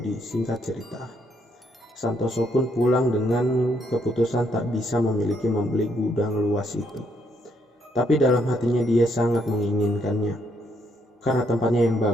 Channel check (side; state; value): both; normal; correlation 0.73